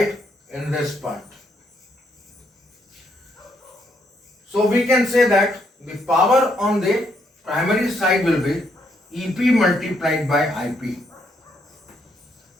in this part. So we can say that the power on the primary side will be EP multiplied by IP,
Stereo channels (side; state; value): both; normal; correlation 0.74